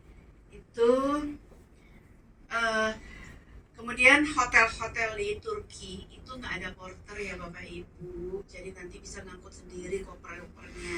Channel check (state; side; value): identical; both; correlation 1.00